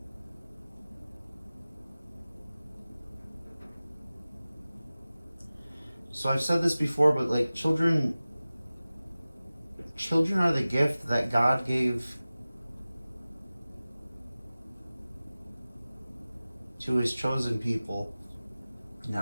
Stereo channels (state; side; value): inverted; both; correlation -0.97